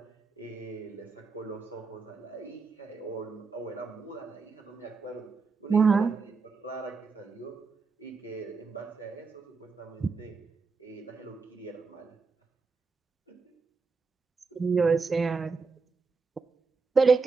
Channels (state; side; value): quieter; left; 4.6 dB